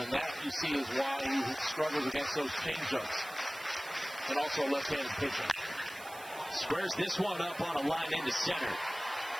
that you see is why he struggles against those changeups. And also left-handed pitching. Squares this one up on a line into center.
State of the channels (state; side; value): noise; right; hiss, 17 dB below the sound